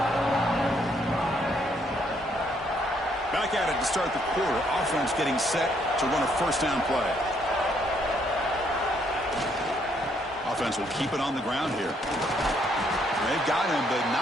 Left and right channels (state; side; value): normal; both; correlation 0.70